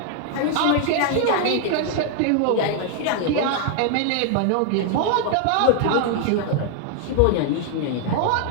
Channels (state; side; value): different; both; correlation 0.00